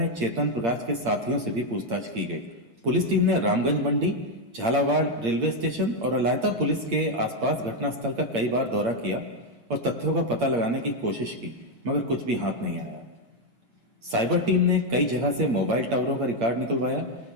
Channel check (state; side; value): late; left; 8.7 ms